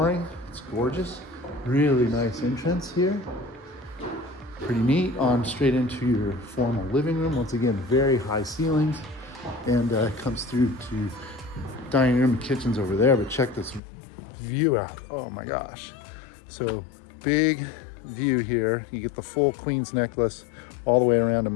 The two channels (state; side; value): drops out; right; at 13.8 s